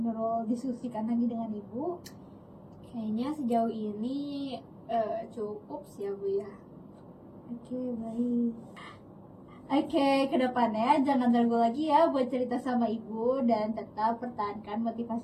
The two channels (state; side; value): identical; both; correlation 1.00